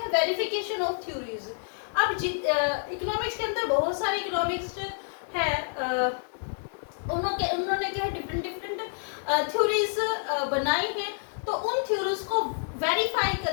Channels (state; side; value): silent; right; digital silence